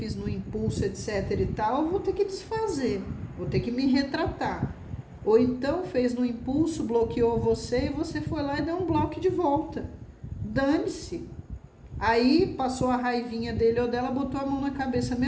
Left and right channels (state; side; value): identical; both; correlation 1.00